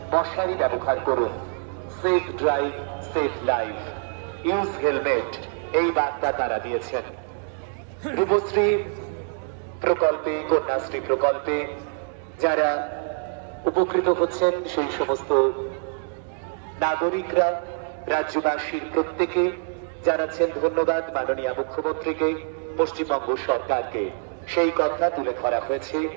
মশারি ব্যবহার করুন, safe drive safe life, use helmet, এই বার্তা তারা দিয়েছেন। রূপশ্রী প্রকল্পে, কন্যাশ্রী প্রকল্পে যারা উপকৃত হচ্ছেন সেই সমস্ত নাগরিকরা, রাজ্যবাসীর প্রত্যেকে জানাচ্ছেন ধন্যবাদ মাননীয় মুখ্যমন্ত্রীকে, পশ্চিমবঙ্গ সরকারকে। সেই কথা তুলে ধরা হয়েছে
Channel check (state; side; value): silent; left; 62 dB below the other